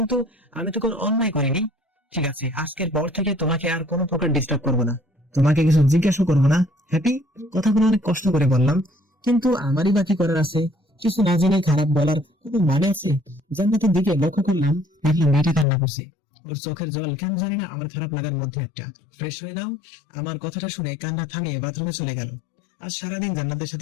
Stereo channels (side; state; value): right; drops out; at 15.7 s